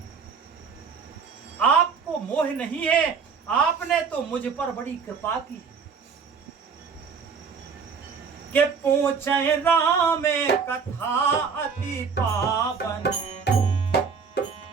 आपको मोह नहीं है, आपने तो मुझ पर बड़ी कृपा की है। के पूछे राम कथा अति पावन,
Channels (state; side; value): quieter; left; 5.8 dB